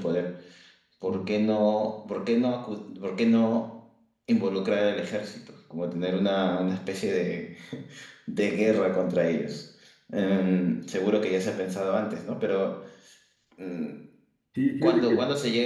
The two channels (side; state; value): both; identical; correlation 1.00